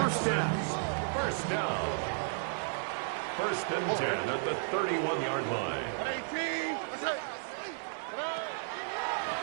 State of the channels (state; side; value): silent; left; digital silence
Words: down. First down. First and 10 at the 31-yard line.